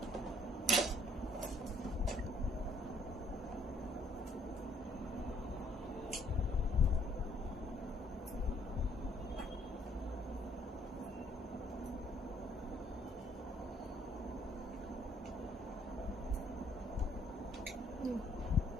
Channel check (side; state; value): both; normal; correlation 0.64